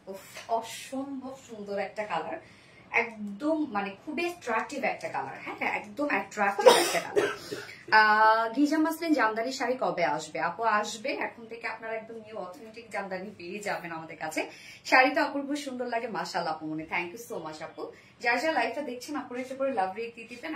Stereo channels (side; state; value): both; identical; correlation 1.00